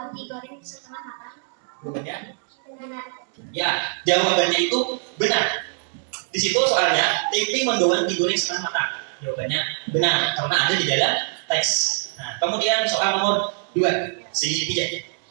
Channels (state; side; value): silent; left; 61 dB below the other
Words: digoreng setengah matang. Jawabannya? Benar. Ya, jawabannya itu benar. Di situ soalnya tempe mendoan digoreng setengah matang. Jawabannya benar karena ada di dalam teks. Nah, kemudian soal nomor 2, si Tijak.